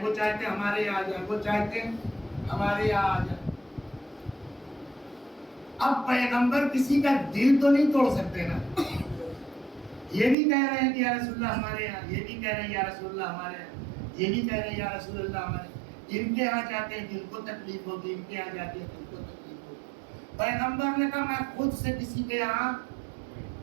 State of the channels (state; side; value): drops out; left; at 10.4 s